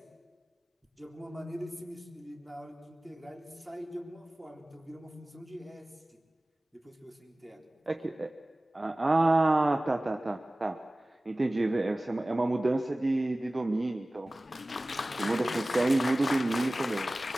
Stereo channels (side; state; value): both; normal; correlation 0.98